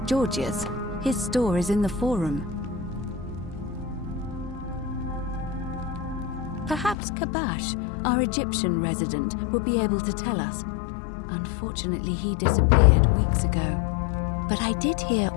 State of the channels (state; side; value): drops out; right; at 7.0 s